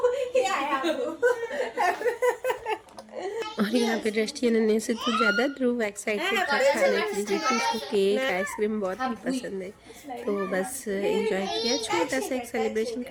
ये आया अबू। और यहाँ पे दृष्टि अनन्या से तो ज़्यादा ध्रुव एक्साइटेड था खाने के लिए, क्योंकि उसको केक आइसक्रीम बहुत ही पसंद है। तो बस एंजॉय किया, छोटा सा एक सेलिब्रेशन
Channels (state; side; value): identical; both; correlation 1.00